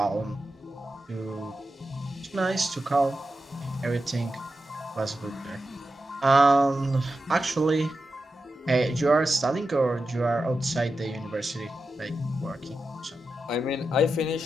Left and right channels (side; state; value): both; normal; correlation 0.90